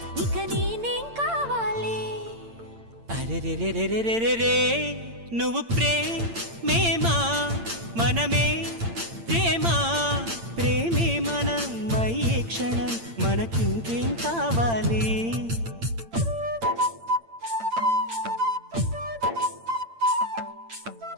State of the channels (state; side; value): late; left; 8.8 ms